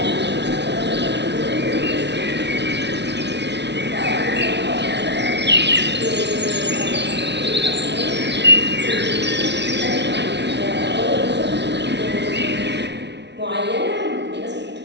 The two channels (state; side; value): late; left; 0.50 ms